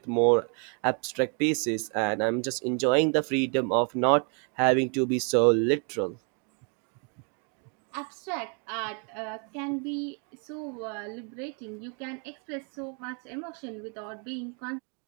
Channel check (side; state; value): left; quieter; 38.2 dB